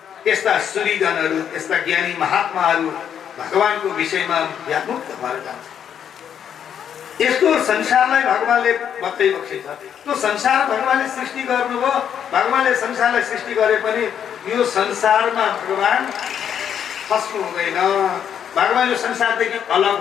त्यस्ता सूर्यजनहरू त्यस्ता ज्ञानी महात्माहरू भगवानको विषयमा व्यामुक्त भएर जान्छ यस्तो संसारलाई भगवानले बताइबक्सिन्छ त्यो संसार भगवानले सृष्टि गर्नुभयो भगवानले संसारलाई सृष्टि गरे पनि यो संसारमा भगवान फस्नु हुँदैन भगवान यो संसारदेखि अलग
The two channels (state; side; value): quieter; right; 8.7 dB